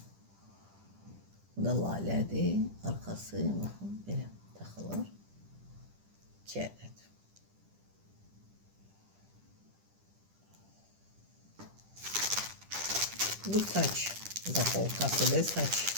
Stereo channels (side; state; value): left; late; 10 ms